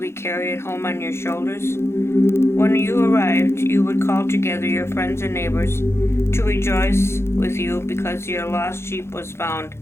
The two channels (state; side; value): late; right; 0.12 ms